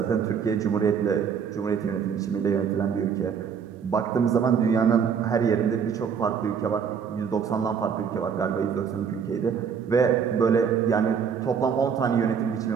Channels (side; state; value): left; quieter; 6.9 dB